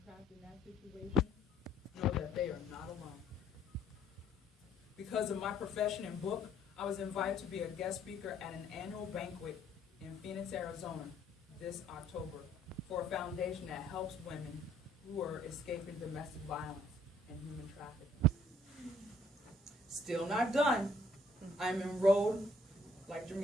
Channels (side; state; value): both; normal; correlation 0.63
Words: trapped in that situation know that they are not alone. Because of my profession and book, I was invited to be a guest speaker at an annual banquet in Phoenix, Arizona this October for a foundation that helps women who are escaping domestic violence and human trafficking. Still not done. I'm enrolled, like